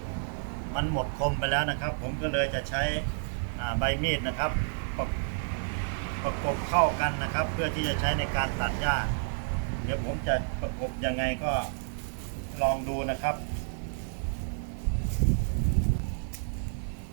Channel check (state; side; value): silent; left; digital silence